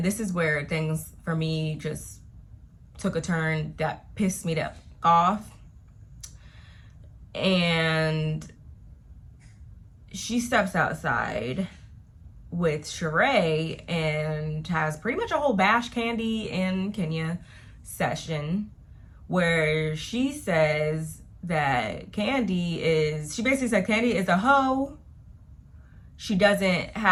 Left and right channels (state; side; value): identical; both; correlation 1.00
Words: this is where things for me just took a turn that pissed me off. And she steps outside with Sheree and has pretty much a whole bash Kandi and Kenya session where she says that she basically said Kandi is a hoe. She doesn't